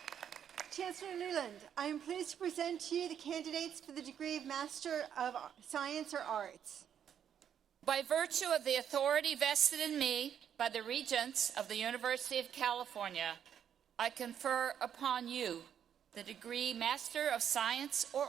Chancellor Leland, I am pleased to present to you the candidates for the degree of Master of Science or Arts. By virtue of the authority vested in me by the Regents of the University of California, I confer upon you the degree Master of Science or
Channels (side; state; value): left; quieter; 8.9 dB